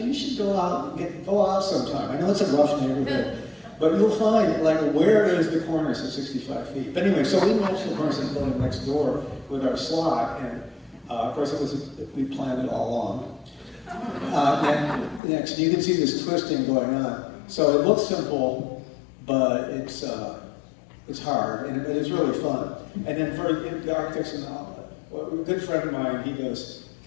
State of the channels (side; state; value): right; drops out; at 15.2 s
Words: should go out sometime. I know it's a rough neighborhood, but you'll find, where is the cornice at 65 feet? But anyway, so we matched the cornice in the building next door with our slot, and of course, we planned it all along. Next, you can see this twisting going on. So it looks simple, but it's hard, but it's really fun. And then for the architects and a good friend of mine, he goes,